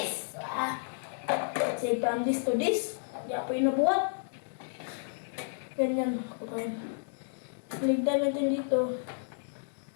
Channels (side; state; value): right; silent; digital silence